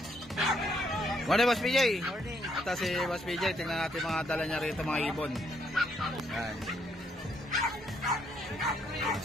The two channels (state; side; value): normal; both; correlation 0.72